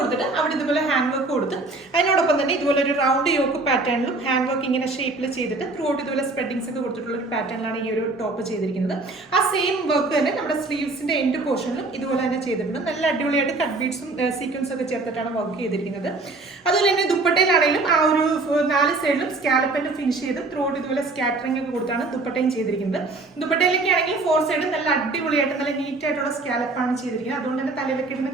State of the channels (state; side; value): quieter; left; 3.3 dB